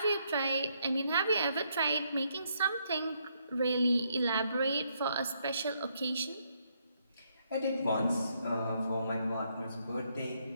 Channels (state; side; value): inverted; both; correlation -0.74